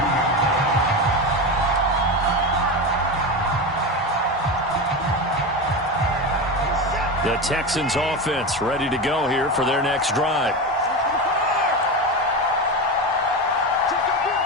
The Texans offense ready to go here for their next drive.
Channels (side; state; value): both; normal; correlation 0.20